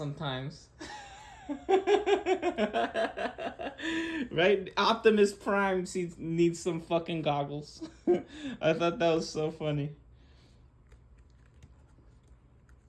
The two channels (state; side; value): identical; both; correlation 1.00